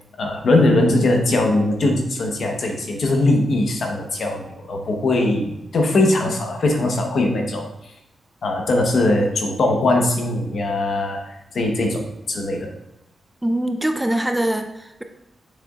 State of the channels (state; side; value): normal; both; correlation 0.82